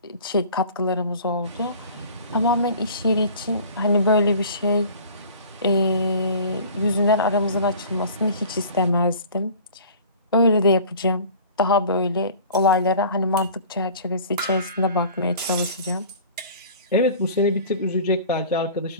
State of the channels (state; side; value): inverted; both; correlation -0.44